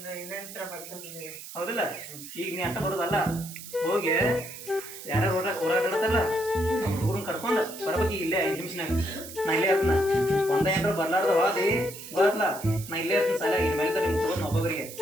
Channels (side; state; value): right; noise; hiss, 13 dB below the sound